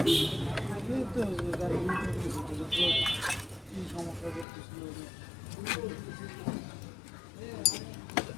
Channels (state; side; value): drops out; right; at 4.5 s